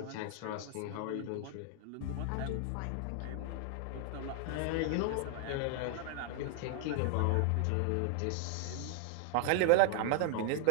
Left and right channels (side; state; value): both; different; correlation 0.00